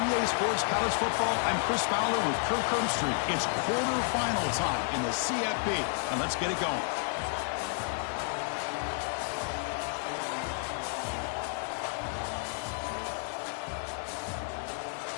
EA Sports College Football, I'm Chris Fowler with Kirk Herbstreit. It's quarterfinal time in the CFP, and let's get it going.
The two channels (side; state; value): right; silent; 57 dB below the other